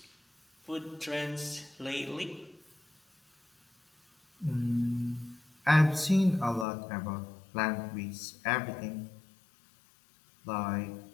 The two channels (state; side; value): drops out; right; at 6.7 s